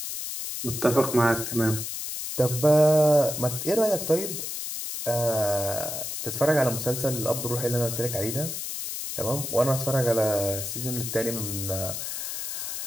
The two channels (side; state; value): left; noise; hiss, 5 dB below the sound